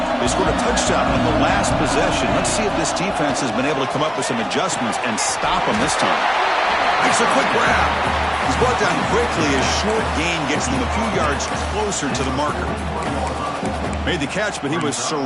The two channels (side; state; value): both; identical; correlation 1.00